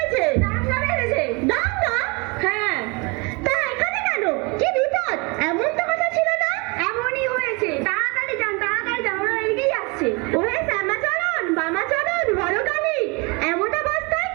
দাঙ্গা বেড়েছে। দাঙ্গা? হ্যাঁ, তা এখানে কেন? কি বিপদ? এমন তো কথা ছিল না। এমনই হয়েছে। তাড়াতাড়ি যান, তাড়াতাড়ি যান, ওরা এদিকেই আসছে। ওহে শ্যামাচরণ, বামাচরণ, বড়কালী, এমন অবস্থায়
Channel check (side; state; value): left; quieter; 29.2 dB